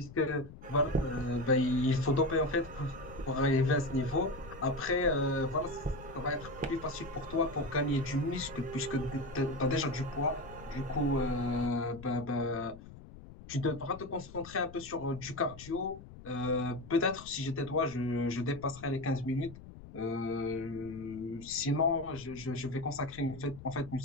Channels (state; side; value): noise; left; rumble, 16 dB below the sound